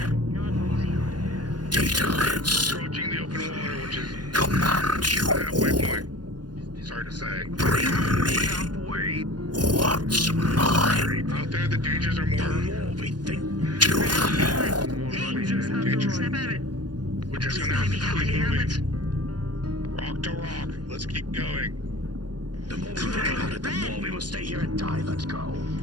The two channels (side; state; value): left; late; 0.70 ms